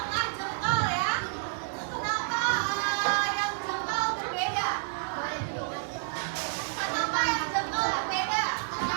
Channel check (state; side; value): silent; left; digital silence